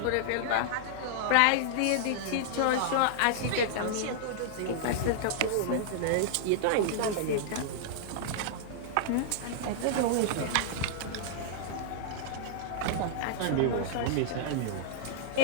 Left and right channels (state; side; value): different; both; correlation -0.01